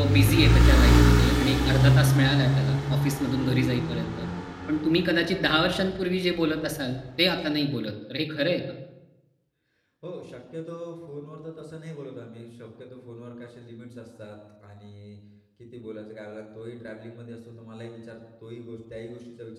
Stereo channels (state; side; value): identical; both; correlation 1.00